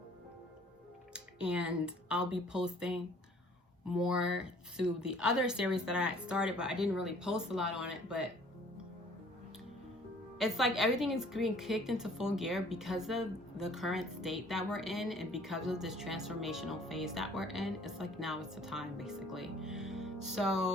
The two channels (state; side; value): normal; both; correlation 0.55